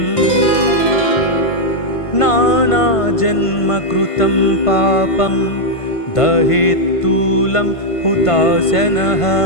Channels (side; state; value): right; late; 1.5 ms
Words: नानाजन्मकृतं पापं दहेत्तूलं हुताशनः